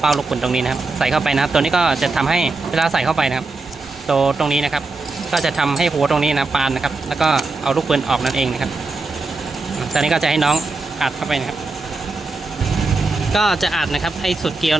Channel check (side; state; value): left; quieter; 3.5 dB